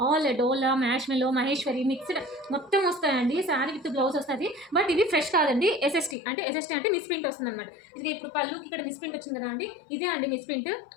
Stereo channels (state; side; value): drops out; right; at 6.2 s